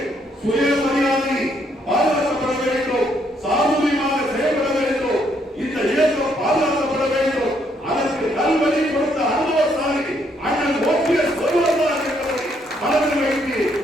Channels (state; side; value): normal; both; correlation 0.71